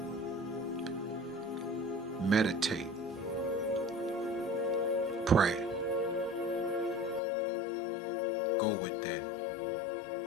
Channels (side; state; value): right; drops out; at 7.2 s